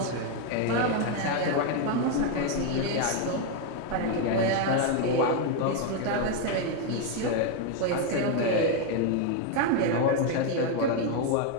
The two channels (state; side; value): different; both; correlation 0.01